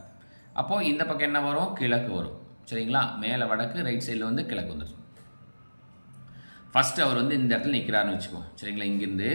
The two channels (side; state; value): both; inverted; correlation -1.00